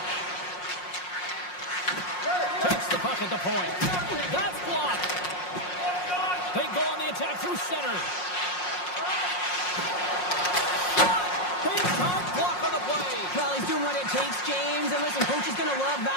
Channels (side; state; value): right; late; 5.5 ms